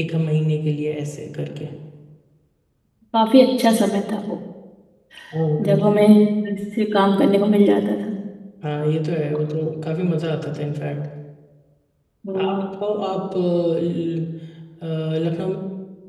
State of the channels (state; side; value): identical; both; correlation 1.00